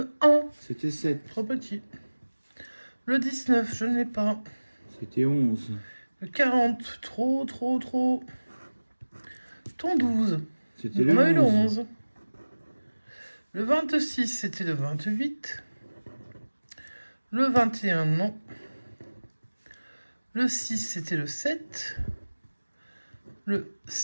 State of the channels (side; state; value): both; inverted; correlation -1.00